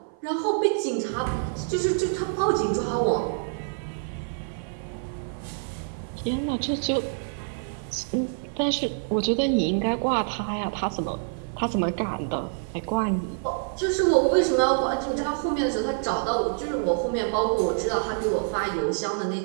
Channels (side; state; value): left; silent; 56 dB below the other